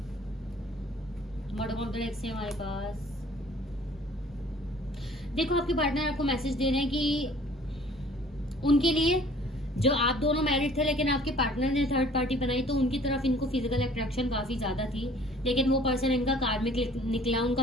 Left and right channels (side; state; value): both; normal; correlation 0.53